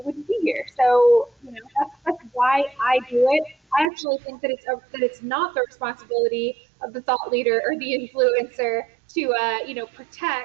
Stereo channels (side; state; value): left; drops out; at 3.9 s